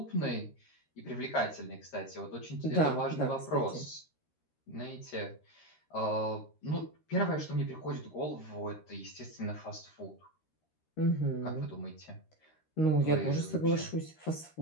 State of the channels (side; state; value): right; late; 13 ms